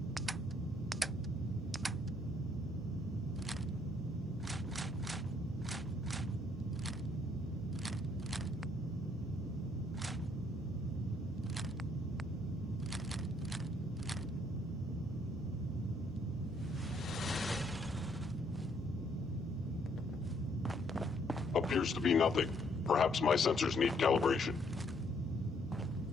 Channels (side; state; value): both; normal; correlation 0.68